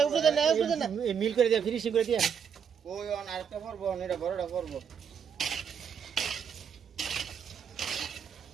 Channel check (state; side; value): quieter; left; 7.4 dB